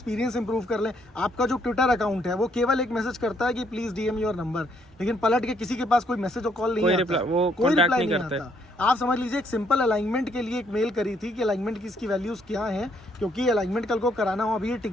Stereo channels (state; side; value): normal; both; correlation 0.70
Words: इंप्रूव कर लें। आपका जो ट्विटर अकाउंट है वो केवल एक मैसेज करता है कि प्लीज़ DM योर नंबर, लेकिन पलट के किसी के पास कोई मैसेज और कॉल नहीं आता, कोई रिप्लाई नहीं आता। आप समझ लीजिए, एक सिंपल अलाइनमेंट के लिए एक मेल करी थी कि अलाइनमेंट की इसकी वैल्यूज़ क्या हैं, क्योंकि अलाइनमेंट कल को कराना हो। अभी ये